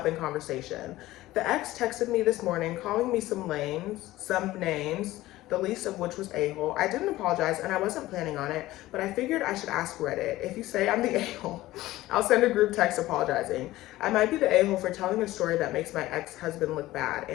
in conversation. The ex texted me this morning calling me some names, the least of which was a-hole. I didn't apologize and I wasn't planning on it, but I figured I should ask Reddit. If you say I'm the a-hole, I'll send a group text apologizing. I might be the a-hole for telling a story that makes my ex-husband look bad,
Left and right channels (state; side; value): quieter; right; 16.7 dB